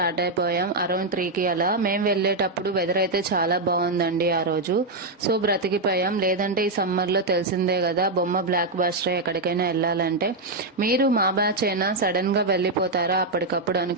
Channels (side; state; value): left; quieter; 3.0 dB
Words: అయిపోయాం. అరౌండ్ 3కి అలా. మేము వెళ్ళేటప్పుడు వెదర్ అయితే చాలా బాగుందండి ఆ రోజు. సో బ్రతికిపోయాం. లేదంటే ఈ సమ్మర్ లో తెలిసిందే కదా, బొమ్మ బ్లాక్ బాస్టర్ ఎక్కడికైనా వెళ్ళాలంటే. మీరు మా బ్యాచ్ అయినా సడన్ గా వెళ్ళిపోతారా అప్పటికప్పుడు